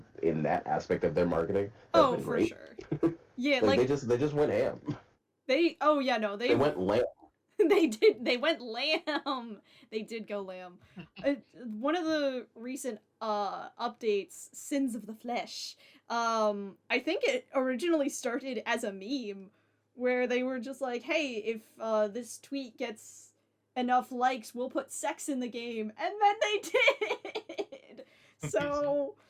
in that aspect of their marketing, has been For great. sure. Yeah, like they just went ham. They went lamb. They went lamb. They did go lamb. One of the recent updates, Sins of the Flesh. I think it originally started as a meme where they were just like, "Hey, if this tweet gets enough likes, we'll put sex in the game." And then they did. So,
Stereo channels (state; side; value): identical; both; correlation 1.00